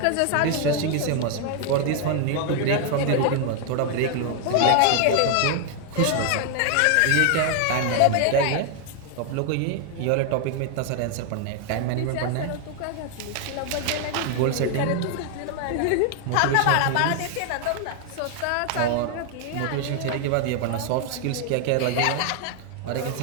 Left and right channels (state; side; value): different; both; correlation 0.00